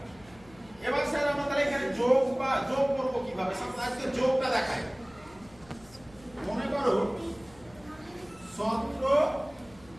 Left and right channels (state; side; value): noise; left; hum, 24 dB below the sound